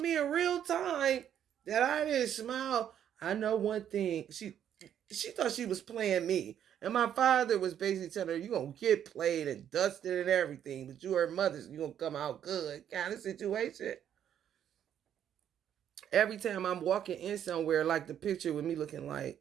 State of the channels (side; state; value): left; quieter; 9.7 dB